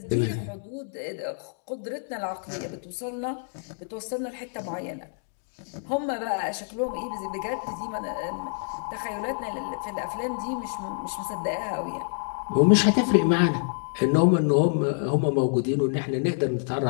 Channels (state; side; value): silent; right; digital silence